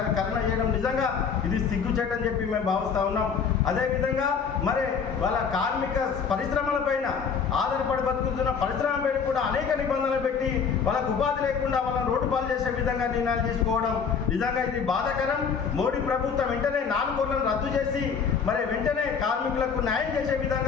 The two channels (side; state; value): right; quieter; 6.2 dB